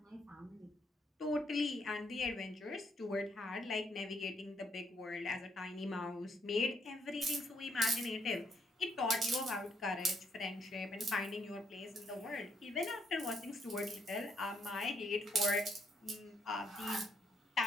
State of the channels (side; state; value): both; normal; correlation 0.73